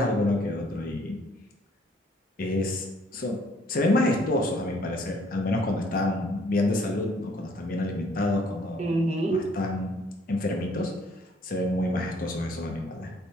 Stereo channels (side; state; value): both; normal; correlation 0.62